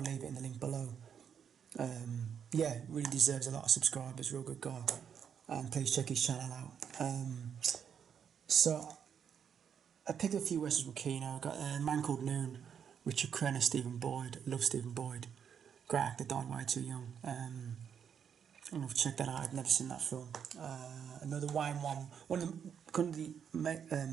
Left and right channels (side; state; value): left; quieter; 7.8 dB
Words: leave it in the link below. Yeah, really deserves a lot of subscribers, real good guy, and please check his channel out. So I picked a few westerns from Kino. Got a Man Called Noon, Richard Crenna, Stephen Boyd. Love Stephen Boyd, great actor, died way too young. I don't know if you check that out. I've never seen that film. Another Wayne one of the